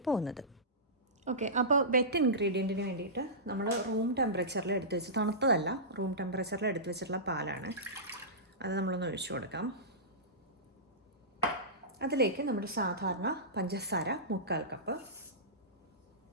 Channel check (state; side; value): normal; both; correlation -0.19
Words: പോകുന്നത്. ഓക്കെ, അപ്പോൾ വെറ്റ് ഇൻഗ്രീഡിയൻറ്റിന് വേണ്ടിയിട്ട് നമ്മൾ റൂം ടെമ്പറേച്ചറിൽ എടുത്ത് വെച്ച്, തണുത്തതല്ല, റൂം ടെമ്പറേച്ചറിൽ എടുത്ത് വെച്ചിട്ടുള്ള പാലാണ്. അത് നമ്മളൊന്ന് ഒഴിച്ചു കൊടുക്കാം. അതിലേക്ക് നമ്മുടെ സാധാരണ പഞ്ചസാര 3/4 കപ്പ്,